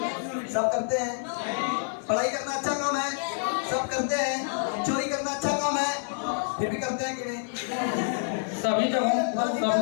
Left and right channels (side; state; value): right; silent; digital silence